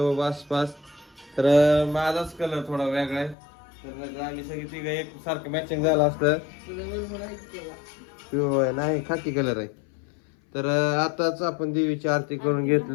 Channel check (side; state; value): right; drops out; at 3.4 s